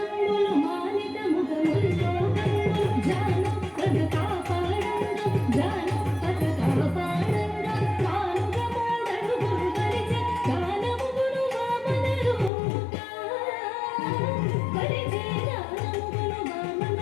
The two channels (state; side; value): drops out; right; at 12.5 s